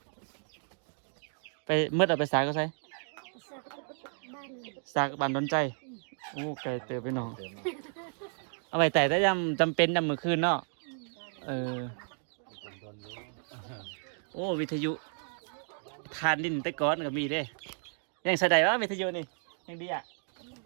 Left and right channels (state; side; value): silent; left; 56 dB below the other